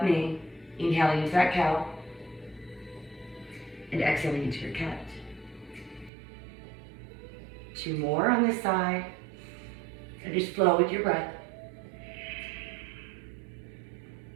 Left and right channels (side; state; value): left; drops out; at 6.1 s